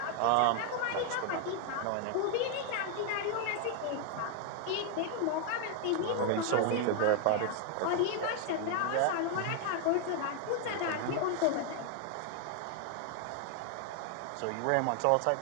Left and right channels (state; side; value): different; both; correlation 0.00